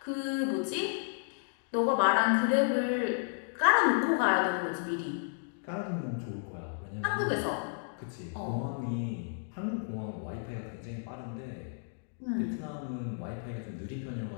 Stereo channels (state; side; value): silent; right; digital silence